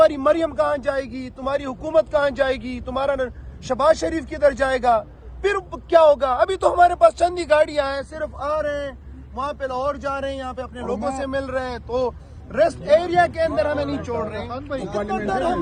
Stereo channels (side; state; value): both; identical; correlation 1.00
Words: مریم کہاں جائے گی؟ تمہاری حکومت کہاں جائے گی؟ تمہارا شہباز شریف کدھر جائے گا؟ پھر کیا ہوگا؟ ابھی تو ہمارے پاس چند ہی گاڑیاں ہیں، صرف آ رہے ہیں، وہاں پہ لاہور جا رہے ہیں، یہاں پہ اپنے لوگوں سے مل رہے ہیں، تو ریسٹ ایریا کے اندر ہمیں نہیں چھوڑ رہے ہیں۔ کتنا ڈر ہے